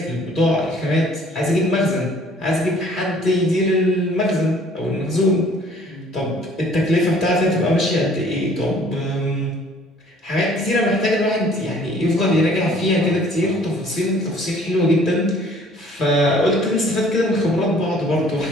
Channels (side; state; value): both; normal; correlation 0.56